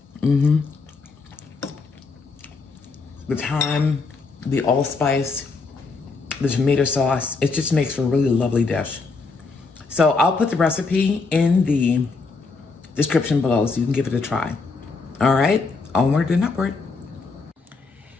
The thyme, the allspice, the tomato sauce, it just makes for a really lovely dish. So I'll put the recipe in the description below so you can give it a try. All right, onward and upward.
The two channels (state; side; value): quieter; right; 4.2 dB